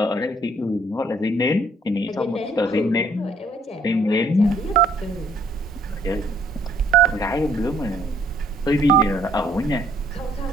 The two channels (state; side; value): normal; both; correlation 0.63